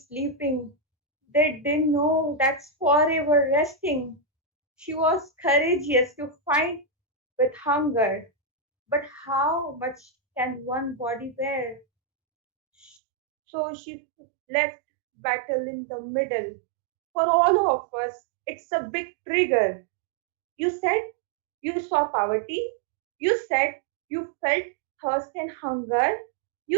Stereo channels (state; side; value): drops out; left; at 13.0 s